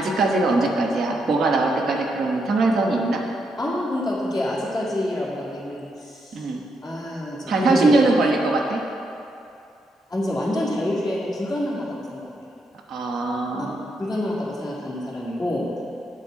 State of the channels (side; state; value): both; normal; correlation 0.80